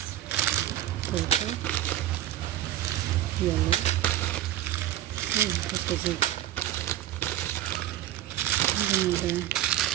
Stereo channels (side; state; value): left; quieter; 12.9 dB